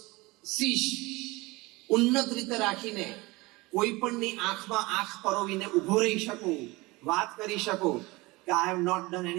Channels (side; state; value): left; quieter; 22.6 dB